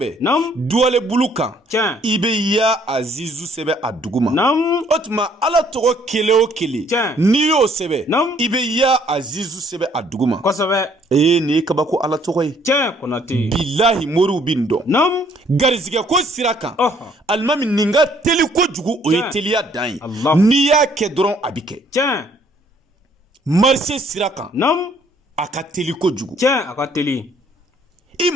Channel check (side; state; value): both; normal; correlation 0.63